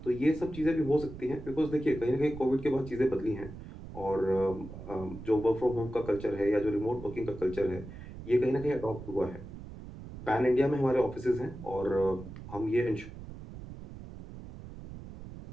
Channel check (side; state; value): right; noise; rumble, 13 dB below the sound